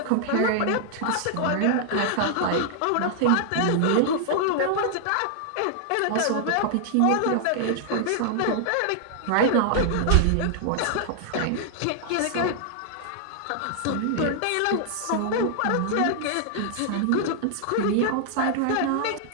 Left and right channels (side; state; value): both; different; correlation -0.01